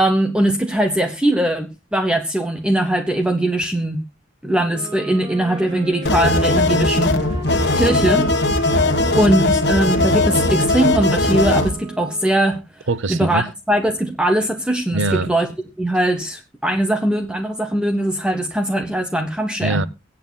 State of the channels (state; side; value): normal; both; correlation 0.54